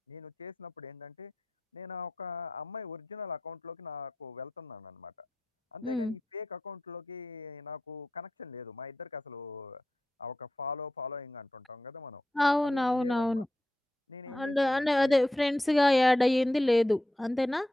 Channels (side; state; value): both; normal; correlation 0.89